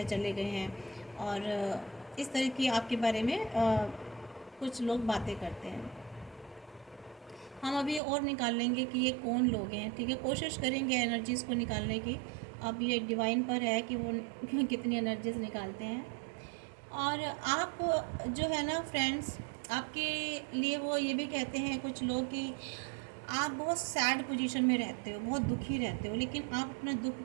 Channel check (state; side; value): drops out; left; at 8.0 s